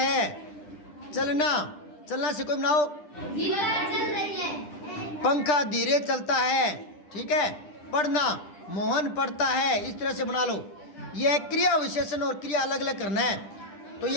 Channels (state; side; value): late; right; 10 ms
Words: चलना, चलना से कोई बनाओ, चल रही है। पंखा धीरे चलता है, ठीक है। पढ़ना, मोहन पढ़ता है, इस तरह से बना लो। यह क्रिया विशेषण और क्रिया अलग अलग करना है। तो